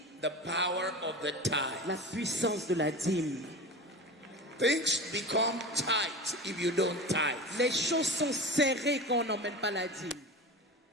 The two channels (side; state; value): both; normal; correlation 0.30